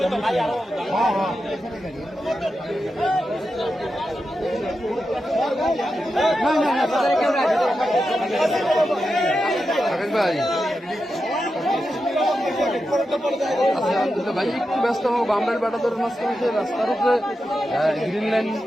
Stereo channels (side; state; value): both; normal; correlation 0.89